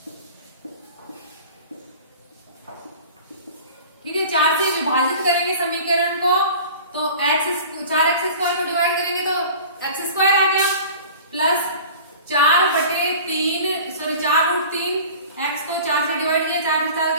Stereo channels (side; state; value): both; inverted; correlation -0.41